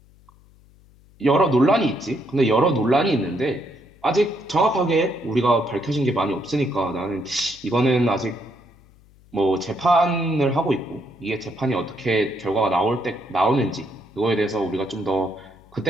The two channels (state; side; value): noise; left; hum, 28 dB below the sound